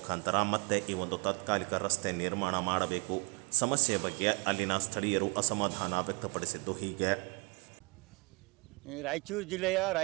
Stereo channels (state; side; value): quieter; left; 30.3 dB